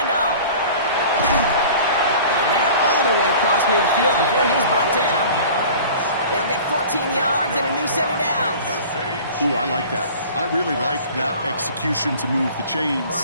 And they're all the way across midfield before he's brought down. They'll get 14 yards and a new set of downs. Ooh, I like that. I really like that execution to move the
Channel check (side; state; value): both; inverted; correlation -0.43